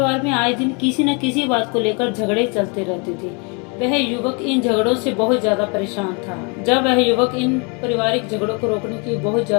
में आए दिन किसी न किसी बात को लेकर झगड़े चलते रहते थे। वह युवक इन झगड़ों से बहुत ज्यादा परेशान था। जब वह युवक इन पारिवारिक झगड़ों को रोकने की बहुत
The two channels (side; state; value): right; quieter; 33.3 dB